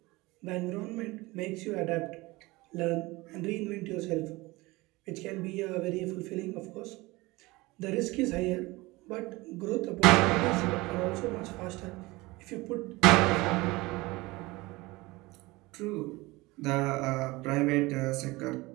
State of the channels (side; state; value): left; quieter; 21.8 dB